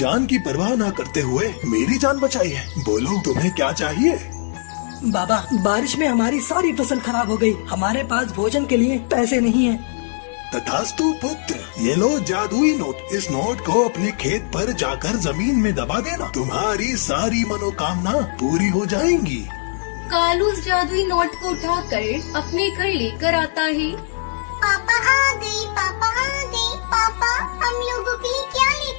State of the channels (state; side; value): silent; right; digital silence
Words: की परवाह ना करते हुए मेरी जान बचाई है। बोलो तुम्हें क्या चाहिए? बाबा, बारिश में हमारी सारी फसल खराब हो गई। हमारे पास भोजन के लिए पैसे नहीं है। तथास्तु पुत्र, ये लो जादुई नोट। इस नोट को अपने खेत पर जाकर जमीन में दबा देना, तुम्हारी सारी मनोकामना पूरी हो जाएंगी। कालू उस जादुई नोट को उठाकर अपने घर लेकर आता है। पापा आ गई, पापा आ गई। पापा, हम लोगों के लिए क्या